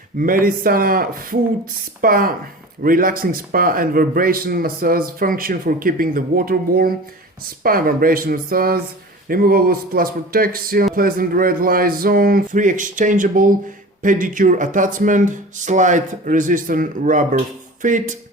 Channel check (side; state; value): both; normal; correlation 0.37